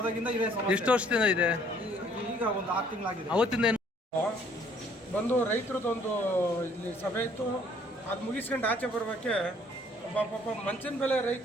ಇದೆ ಸಮಸ್ಯೆ. ಎಷ್ಟು ವರ್ಷದಿಂದ ಇದೆ? ಈಗ ಒಂದು 6 ತಿಂಗಳಾಗಿದೆ. ಅವತ್ತಿಂದ ಏನು ಬಂದು ರೈತರದೊಂದು ಇಲ್ಲಿ ಸಭೆ ಇತ್ತು. ಅದು ಮುಗಿಸ್ಕೊಂಡು ಆಚೆ ಬರೋಕ್ಕೆ ಪಾಪ ಮಂಚಿನ ಬೆಲೆ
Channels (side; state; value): both; normal; correlation 0.60